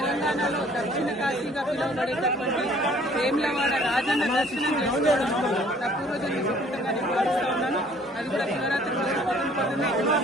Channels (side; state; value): both; normal; correlation 0.57